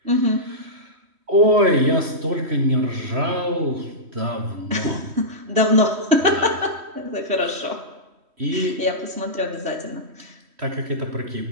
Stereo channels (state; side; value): late; left; 3.1 ms